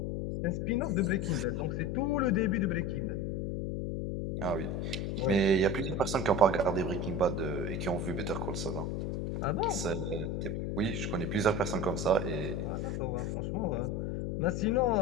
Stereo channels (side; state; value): left; noise; hum, 1 dB below the sound